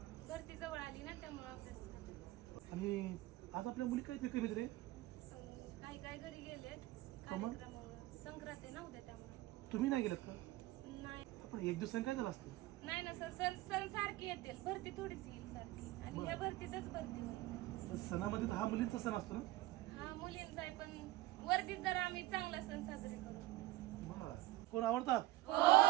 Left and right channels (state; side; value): quieter; left; 17.6 dB